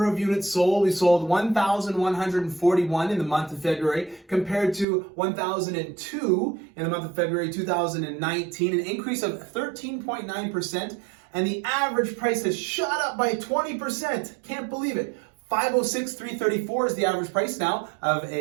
of units sold, we sold 1,141 in the month of February compared to 1,002 in the month of February 2019, an increase of 13.9%, and the average price has shot up by 20%. Can't believe it. 506,334 is the average price now of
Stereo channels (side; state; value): left; drops out; at 4.9 s